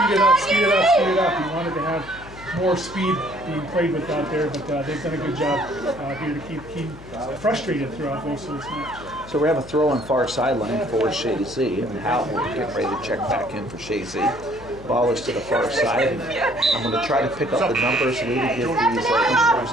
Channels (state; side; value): noise; left; hum, 18 dB below the sound